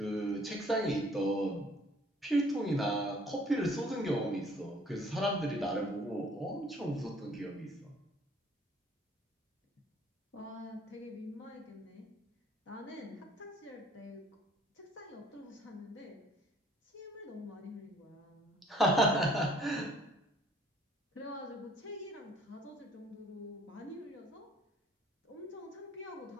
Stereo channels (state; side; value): normal; both; correlation 0.57